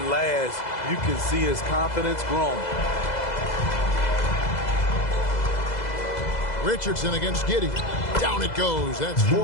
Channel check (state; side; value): late; right; 2.0 ms